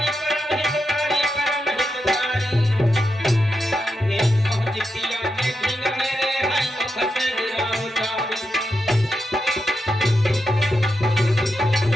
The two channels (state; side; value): normal; both; correlation 0.86